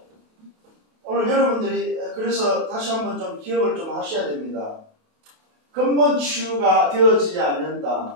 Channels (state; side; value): late; left; 28 ms